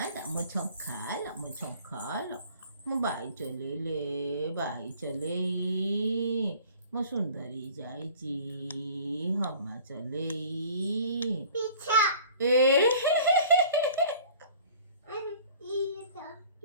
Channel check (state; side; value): inverted; both; correlation -0.49